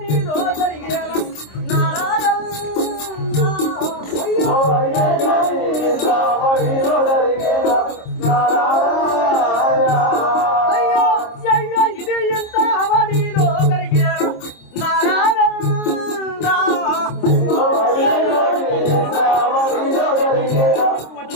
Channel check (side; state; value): right; late; 26 ms